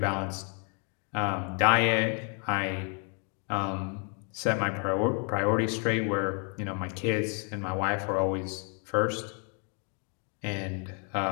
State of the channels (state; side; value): quieter; right; 39.5 dB